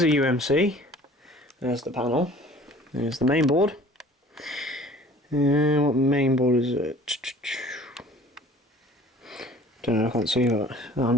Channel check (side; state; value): both; normal; correlation 0.49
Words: a UMC. There's the panel. There's the main board. What main board is it? Don't know, I can't see that. I'm